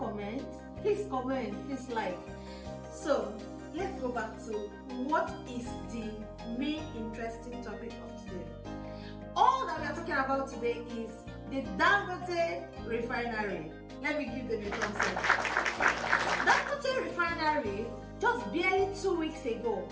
Please comment, please like. So let's go back to what is the main interesting topic of today. All that we are talking about today is the Dangote refinery. Let me give them a thumbs up. Dangote refinery, just barely 2 weeks ago,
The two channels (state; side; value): identical; both; correlation 1.00